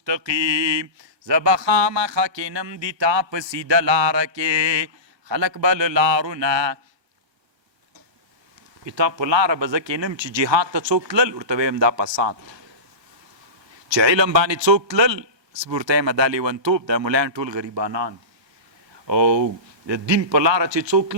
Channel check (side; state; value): left; late; 1.3 ms